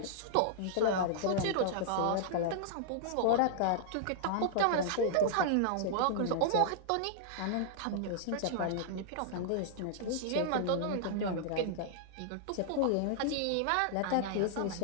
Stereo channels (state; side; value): different; both; correlation -0.01